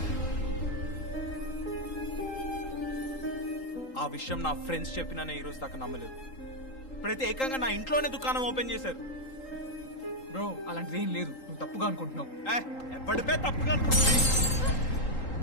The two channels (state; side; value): late; right; 3.8 ms